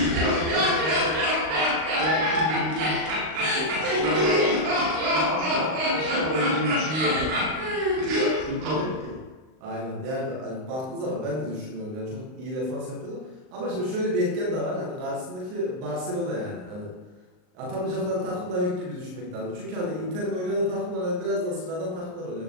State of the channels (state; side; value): late; left; 38 ms